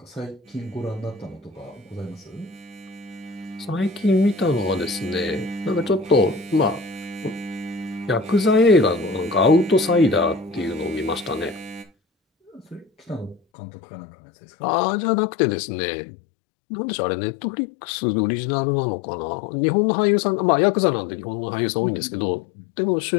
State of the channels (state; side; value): drops out; right; at 13.4 s